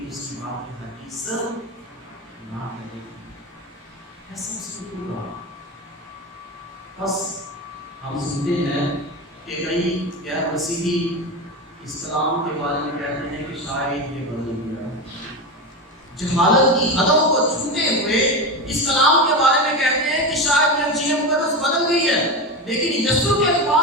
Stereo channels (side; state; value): both; normal; correlation 0.20